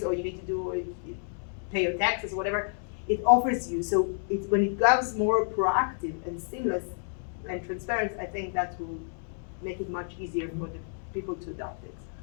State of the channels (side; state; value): right; silent; digital silence